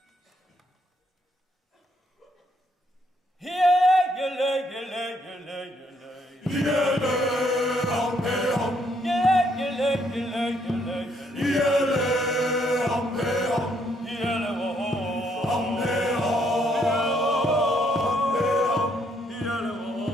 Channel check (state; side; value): normal; both; correlation 0.71